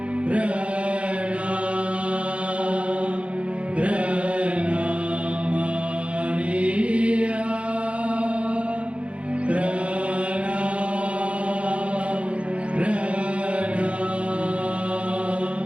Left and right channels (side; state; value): left; late; 0.061 ms